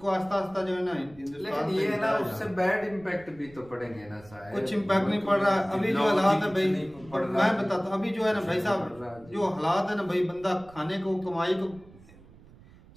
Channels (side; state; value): right; noise; rumble, 23 dB below the sound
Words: आस्ता आस्ता जो है ना हिंदुस्तान ये है ना उससे बैड इम्पैक्ट भी तो पड़ेंगे ना शायद। कुछ इम्पैक्ट नहीं पड़ रहा अभी जो हालात है भाई, मैं बताता हूँ अभी जो है ना भाई साहब जो हालात है ना भाई, बंदा खाने को कमाई को,